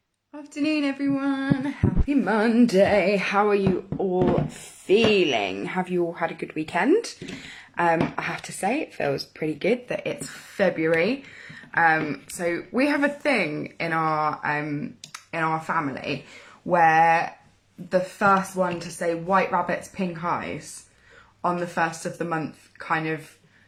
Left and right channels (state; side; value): identical; both; correlation 1.00